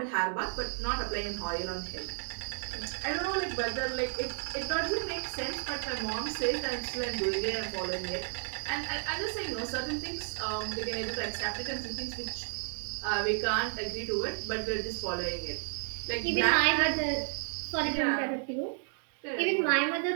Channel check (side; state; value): left; silent; 56 dB below the other